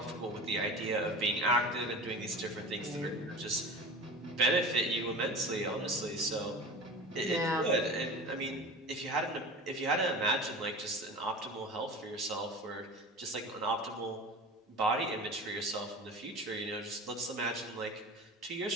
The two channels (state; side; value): normal; both; correlation 0.33